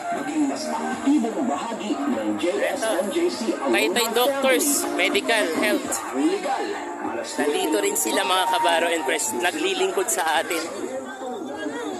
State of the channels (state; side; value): identical; both; correlation 1.00